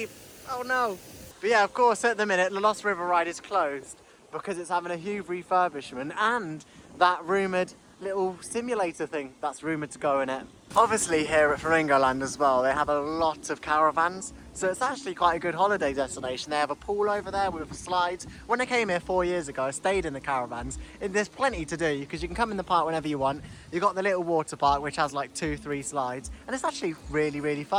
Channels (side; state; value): both; identical; correlation 1.00